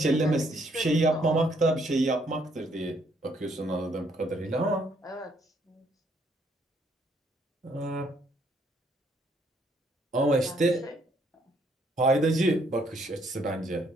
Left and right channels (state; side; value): normal; both; correlation 0.69